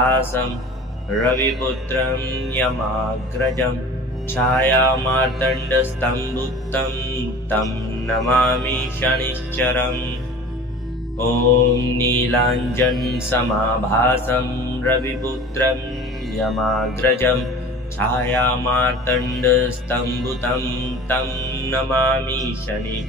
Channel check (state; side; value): normal; both; correlation 0.41